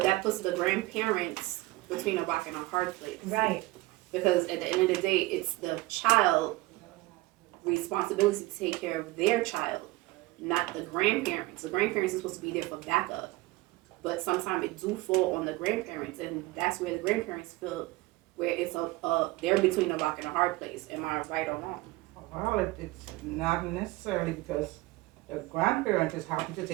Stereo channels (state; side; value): quieter; left; 20.0 dB